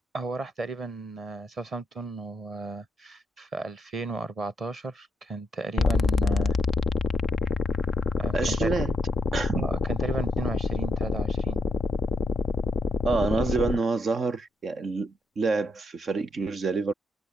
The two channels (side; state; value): both; normal; correlation 0.78